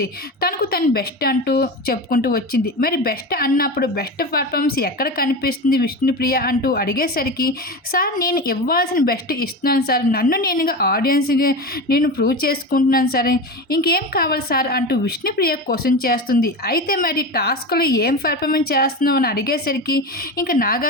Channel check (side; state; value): both; normal; correlation 0.24